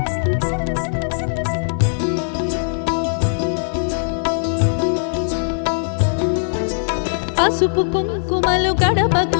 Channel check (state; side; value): silent; right; digital silence